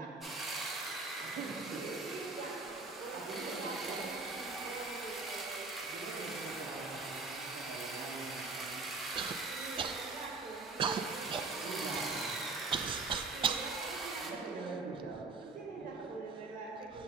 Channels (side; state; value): left; quieter; 3.8 dB